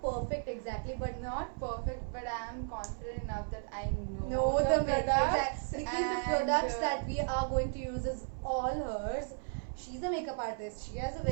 perfect exactly, but Not perfect, but I'm confident enough that I know no the makeup products because the products that we are going to use is all hers. She's a makeup artist. She has a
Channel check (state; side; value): silent; left; 55 dB below the other